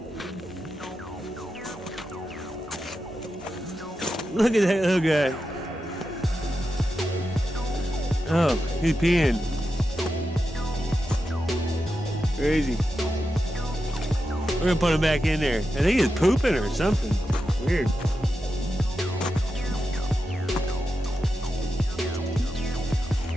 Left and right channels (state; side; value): normal; both; correlation 0.89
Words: Look at that little guy. Oh, he's peeing. Crazy. We're gonna put him back in there. I think he's pooping or something. Weird.